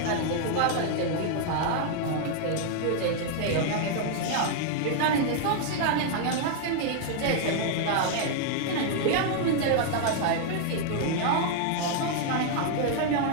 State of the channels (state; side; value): different; both; correlation 0.00